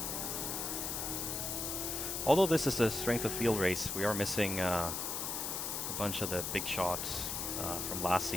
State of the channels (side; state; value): left; noise; hiss, 2 dB below the sound